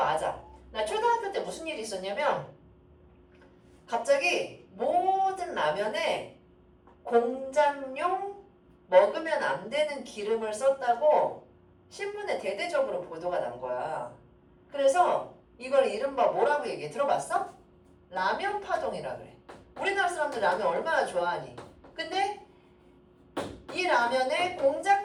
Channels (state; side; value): identical; both; correlation 1.00